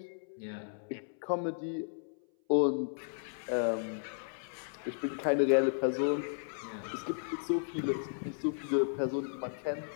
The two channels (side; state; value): right; silent; 55 dB below the other